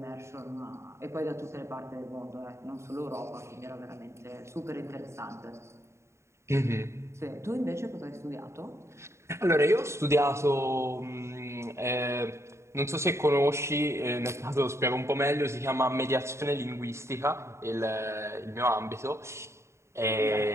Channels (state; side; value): late; left; 0.13 ms